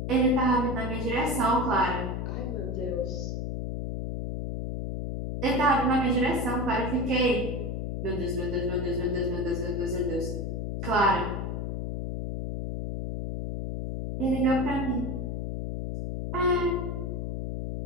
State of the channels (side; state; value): left; noise; hum, 3 dB below the sound